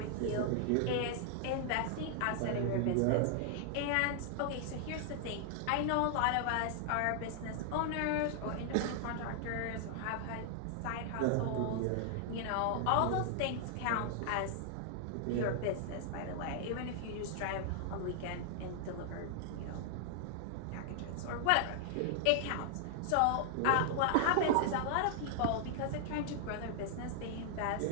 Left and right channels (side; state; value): both; different; correlation -0.01